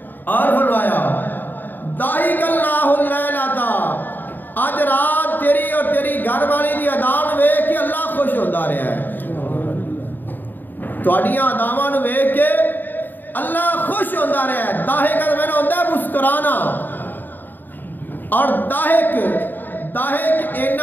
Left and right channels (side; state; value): right; late; 0.090 ms